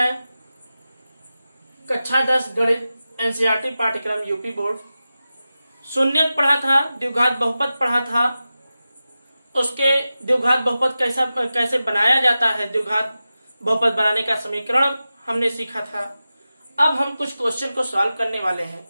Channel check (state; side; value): inverted; both; correlation -0.94